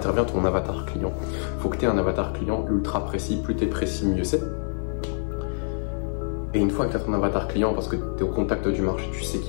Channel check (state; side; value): silent; right; digital silence